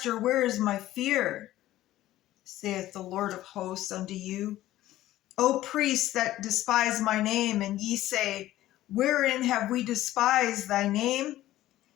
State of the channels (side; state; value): right; quieter; 14.7 dB